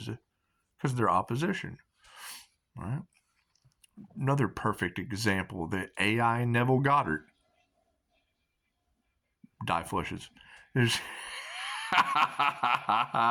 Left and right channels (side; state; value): both; identical; correlation 1.00